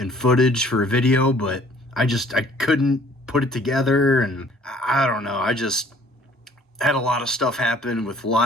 footage for a video, but I couldn't put it together, and I don't know, I just had a lot of stuff happen with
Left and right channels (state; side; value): normal; both; correlation 0.56